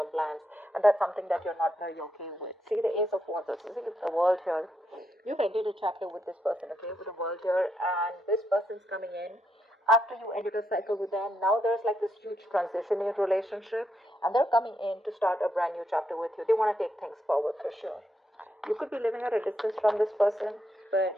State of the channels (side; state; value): both; normal; correlation 0.80